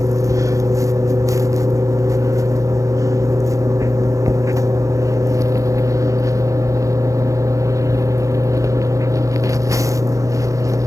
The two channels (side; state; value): left; late; 0.16 ms